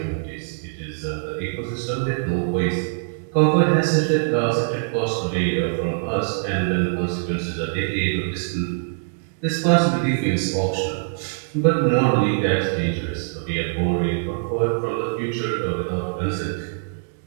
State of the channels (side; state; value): left; silent; digital silence